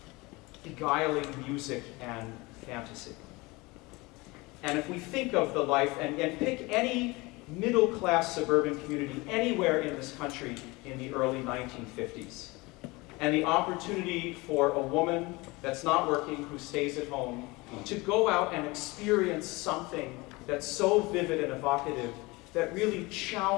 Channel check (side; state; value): right; quieter; 23.7 dB